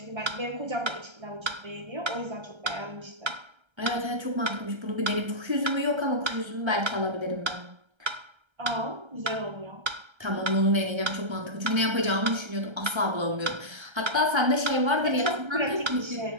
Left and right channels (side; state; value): left; late; 1.3 ms